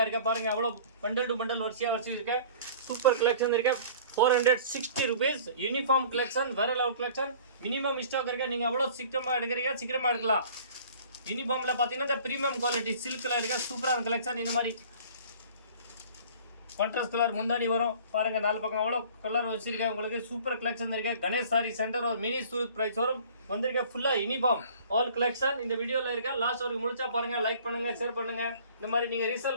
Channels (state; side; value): inverted; both; correlation -0.48